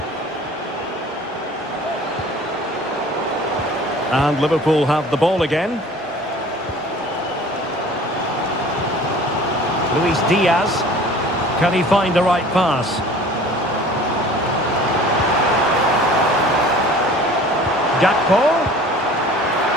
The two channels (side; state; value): both; normal; correlation 0.46